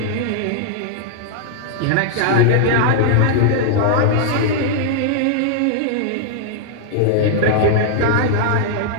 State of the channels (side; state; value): both; different; correlation -0.01